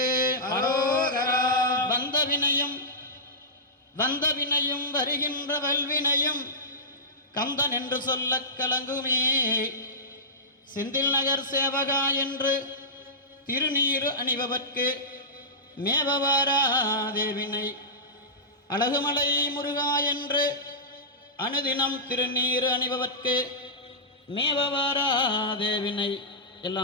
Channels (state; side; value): normal; both; correlation -0.16